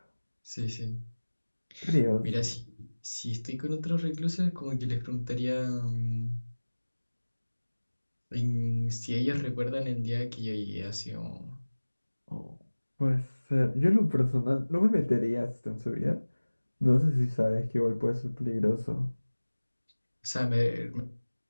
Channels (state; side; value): inverted; both; correlation -1.00